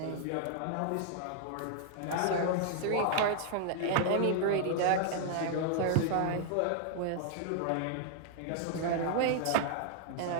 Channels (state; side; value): different; both; correlation -0.01